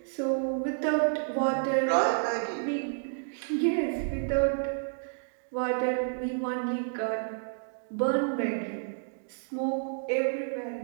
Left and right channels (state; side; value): silent; left; digital silence